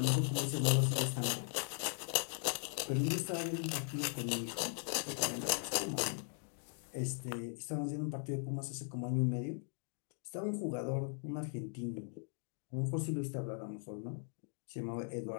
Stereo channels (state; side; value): silent; right; 52 dB below the other